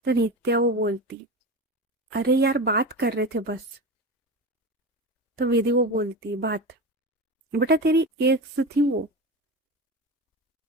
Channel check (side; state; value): both; normal; correlation 0.25